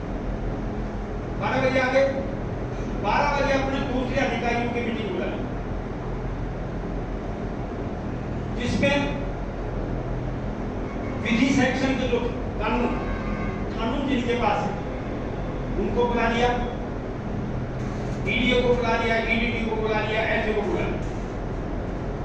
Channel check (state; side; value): identical; both; correlation 1.00